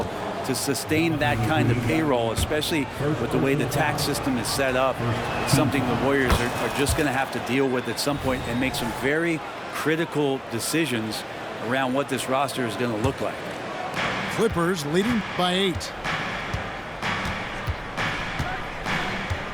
to sustain that kind of payroll, especially with the way the tax system is set up, it's something the Warriors are just going to have to deal with at some point and make some very critical decisions around what this roster is going to look like. Clippers leading by 8.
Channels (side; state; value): both; identical; correlation 1.00